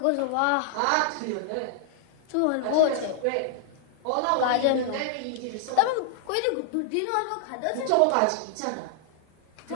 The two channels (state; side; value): different; both; correlation -0.01